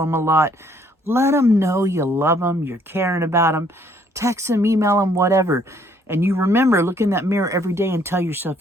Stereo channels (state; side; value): normal; both; correlation 0.64